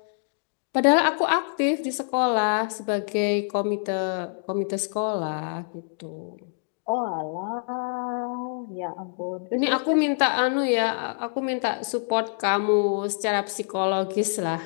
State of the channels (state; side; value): silent; right; 55 dB below the other